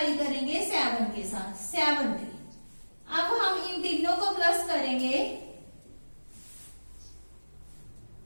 करेंगे 7 के साथ, 70। अब हम इन तीनों को प्लस करेंगे,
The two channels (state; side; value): inverted; both; correlation -1.00